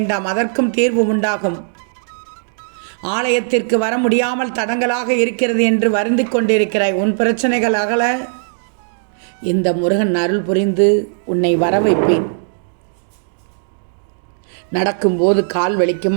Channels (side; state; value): left; silent; digital silence